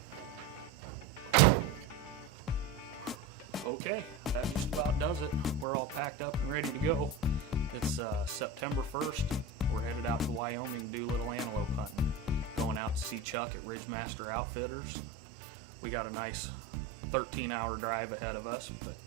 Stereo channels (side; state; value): left; drops out; at 13.4 s